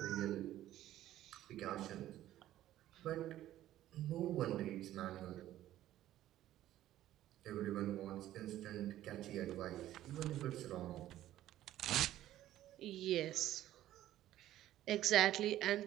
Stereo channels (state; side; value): quieter; left; 13.5 dB